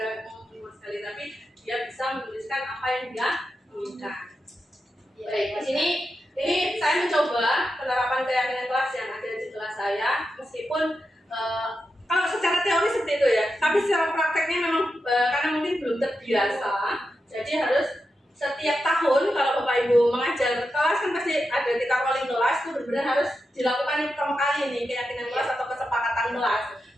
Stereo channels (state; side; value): normal; both; correlation 0.88